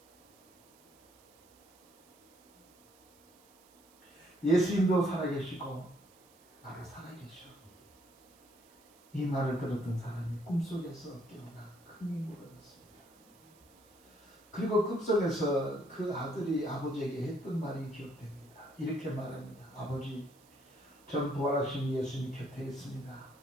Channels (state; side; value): noise; right; hiss, 28 dB below the sound